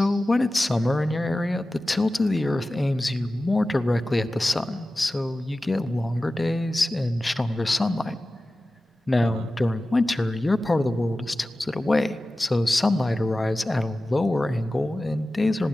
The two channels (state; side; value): normal; both; correlation 0.95